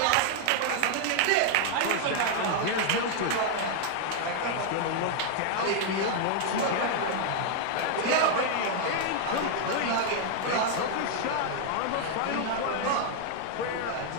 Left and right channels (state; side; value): different; both; correlation 0.00